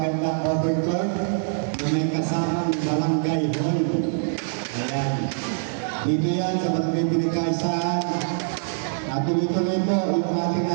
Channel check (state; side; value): silent; left; digital silence